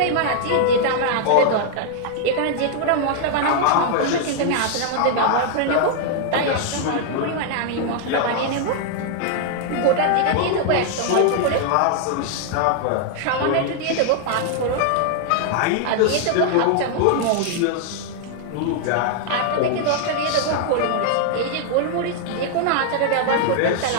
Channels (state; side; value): different; both; correlation 0.00